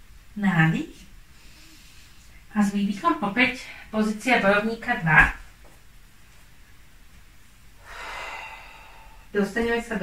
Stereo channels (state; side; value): identical; both; correlation 1.00